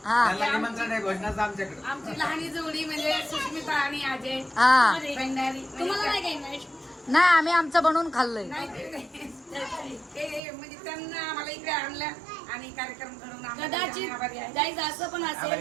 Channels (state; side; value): drops out; left; at 10.4 s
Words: हा निमंत्रण आहे घोषणाचं आमच्याकडे. आमची लहानी जोडी म्हणजे सुष्मिता आणि अजय हा भंडारी. तुम्हाला नाही काही नाही आम्ही आमचं बनवून खाल्लंय. ते म्हणजे त्यांना आम्हाला इकडे आणलं आणि कार्यक्रम घडवून आणला. कदाचित आभारी आहे. गाईज असं पण आभारी,